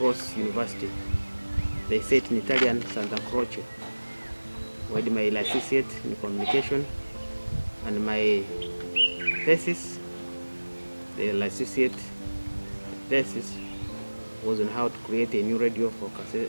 University. They say it in Italian, Santa Croce. I did my licentiate in communication, and my thesis, the licentiate thesis, was on how to create a new radio for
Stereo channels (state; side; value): inverted; both; correlation -1.00